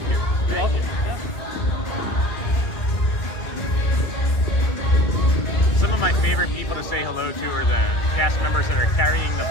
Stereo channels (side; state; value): right; late; 2.1 ms